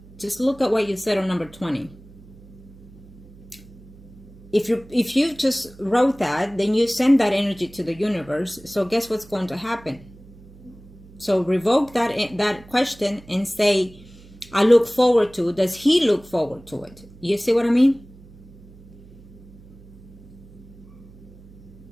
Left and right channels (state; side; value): noise; right; hum, 21 dB below the sound